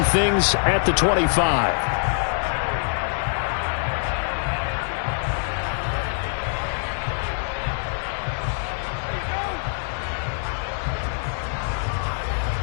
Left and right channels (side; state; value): right; silent; 55 dB below the other